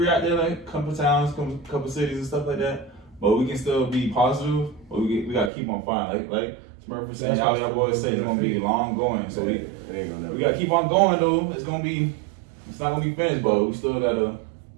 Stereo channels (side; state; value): left; drops out; at 5.5 s